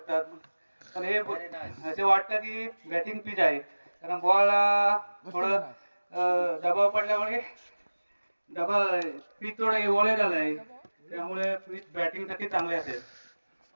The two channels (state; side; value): inverted; both; correlation -1.00